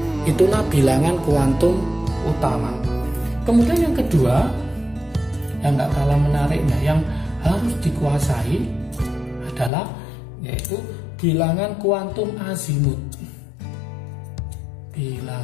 Itulah bilangan kuantum utama. Kemudian yang kedua, yang nggak kalah menariknya, yang harus dikuasai adalah yaitu bilangan kuantum azimut.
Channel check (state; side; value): drops out; right; at 9.7 s